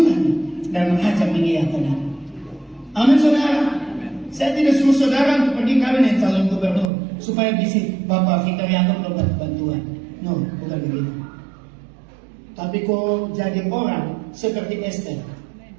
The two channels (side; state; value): left; drops out; at 6.9 s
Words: dan raja mengiyakan. Amin saudara. Saya tidak suruh saudara untuk pergi kawin dengan calon gubernur supaya bisa Bapak Victor Yaakob dapat bantuan. No, bukan begitu. Tapi kau jadi orang seperti Esther